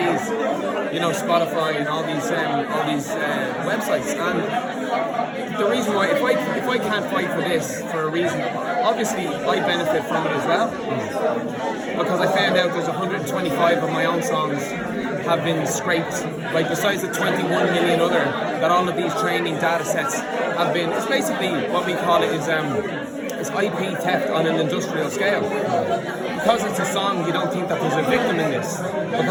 You know, Spotify and all these websites. And the reason why, if I can't fight for this for a reason, obviously I benefit from it as well, because I found out there's 125 of my own songs have been scraped. Like, besides the 21 million other, that all of these training data sets have been. It's basically what we call it is it's IP theft on an industrial scale. Because it's a song, you don't think that there's a victim in this,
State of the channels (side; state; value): both; identical; correlation 1.00